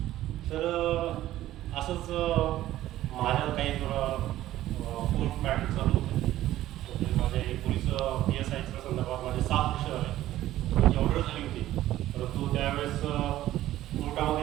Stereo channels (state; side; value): quieter; left; 14.2 dB